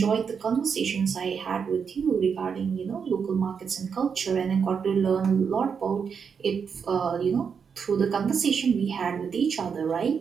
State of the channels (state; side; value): quieter; left; 6.5 dB